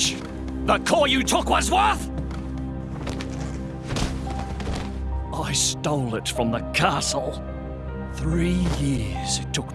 the core you took was worth? I stole it from the castle. 3 years it took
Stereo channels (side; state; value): both; identical; correlation 1.00